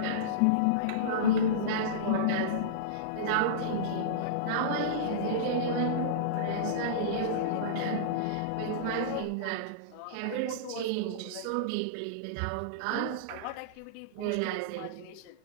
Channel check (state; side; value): different; both; correlation -0.04